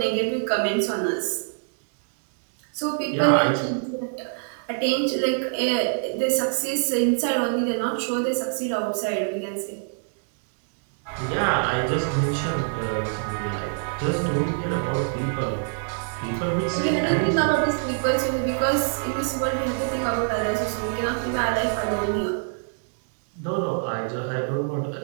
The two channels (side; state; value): left; silent; digital silence